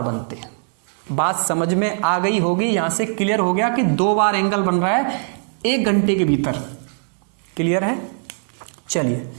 बनते हैं। बात समझ में आ गई होगी, यहां से क्लियर हो गया कि 2 बार एंगल बन रहा है 1 घंटे के भीतर। क्लियर है? चलिए,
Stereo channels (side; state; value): left; silent; 64 dB below the other